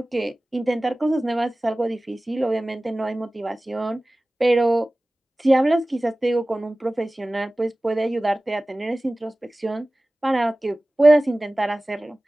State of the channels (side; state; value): both; normal; correlation 0.98